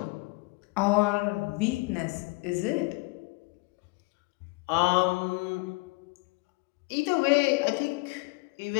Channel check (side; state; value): right; quieter; 26.5 dB